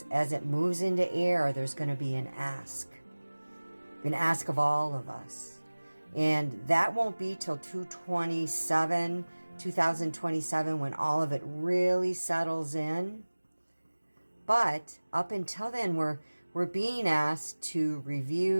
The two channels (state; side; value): inverted; both; correlation -1.00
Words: as it moves into air, there's going to be an ask of all of us. And that won't be till 2027, when all of it really settles in. But up until then, we're being asked to